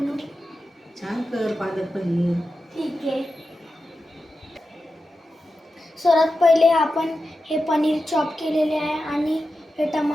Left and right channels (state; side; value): normal; both; correlation 0.91